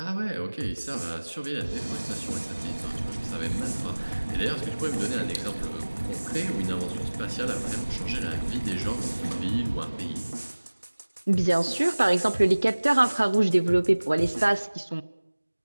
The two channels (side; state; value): both; inverted; correlation -1.00